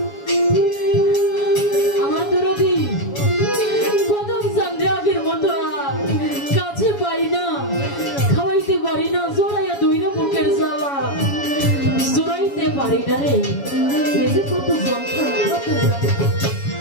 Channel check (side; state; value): right; late; 7.2 ms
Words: আমার দরদি কদম চান্দে আগের মতো আর কাছে পাই না, খাওয়াইতে পারি না, জোড়াইয়া দইরা বুকের জ্বালা জোড়াইতে পারি না রে। এই যে কত যন্ত্রণা, কত